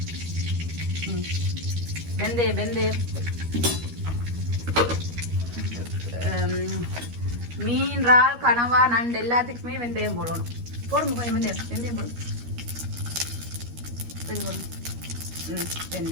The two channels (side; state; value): left; late; 13 ms